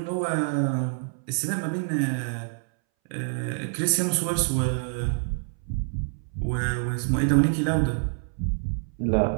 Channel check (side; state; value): left; silent; 61 dB below the other